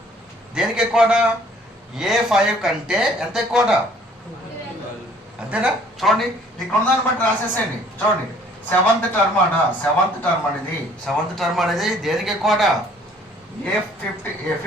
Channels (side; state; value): both; normal; correlation 0.58